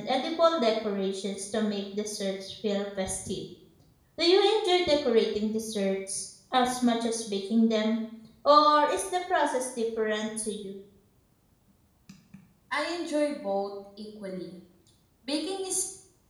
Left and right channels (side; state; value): both; identical; correlation 1.00